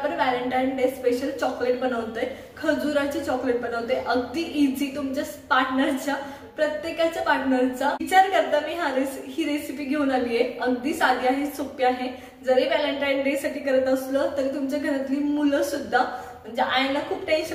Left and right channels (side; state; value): both; identical; correlation 1.00